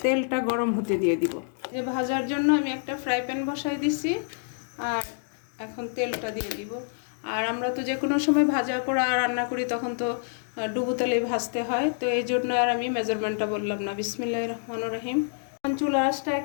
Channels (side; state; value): right; silent; digital silence